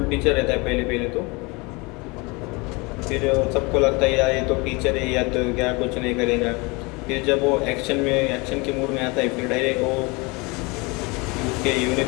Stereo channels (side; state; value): right; quieter; 26.8 dB